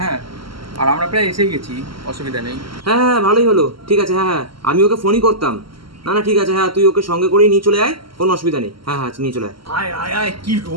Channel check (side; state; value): left; late; 0.74 ms